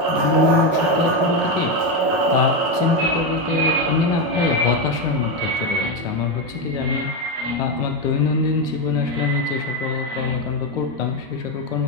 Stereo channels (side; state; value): left; late; 11 ms